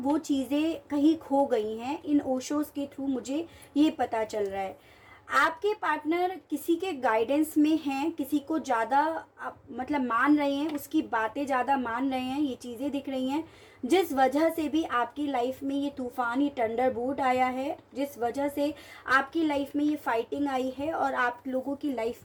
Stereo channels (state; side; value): identical; both; correlation 1.00